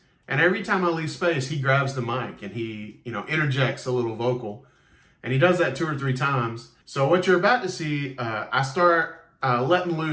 And every time I leave space, he grabs the mic and he, interjects a little vocal. And he does that 2 or 3 times. So what you're about to see, I start letting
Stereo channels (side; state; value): both; identical; correlation 1.00